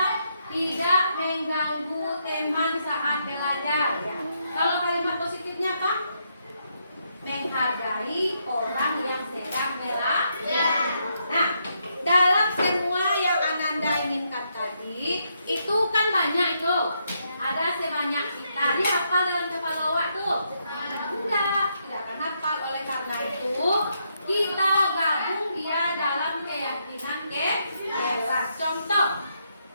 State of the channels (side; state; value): both; inverted; correlation -0.78